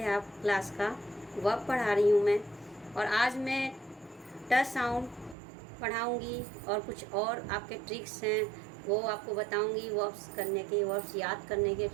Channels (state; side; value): drops out; left; at 5.4 s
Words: आप क्लास का। वर्ब पढ़ा रही हूँ मैं, और आज मैं ट साउंड पढ़ाऊँगी और कुछ और आपके ट्रिक्स हैं वो आपको बताऊँगी। वर्ब्स करने के, वर्ब्स याद करने के